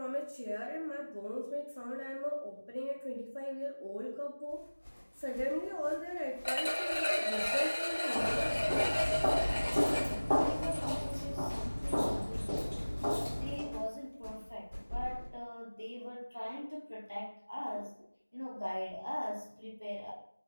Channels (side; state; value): both; inverted; correlation -1.00